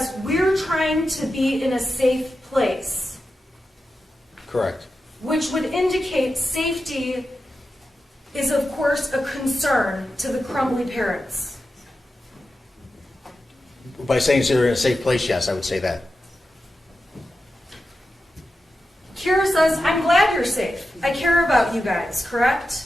we're trying to be in a safe place, Correct. which would indicate safety is, of course, a concern to the Crumbley parents. By saying they're in a safe place, yes, I would say that. Kira says, I'm glad you're safe. I care about you guys, correct?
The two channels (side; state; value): both; normal; correlation 0.91